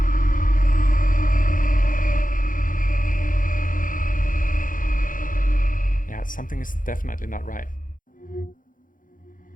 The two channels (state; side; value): late; right; 0.39 ms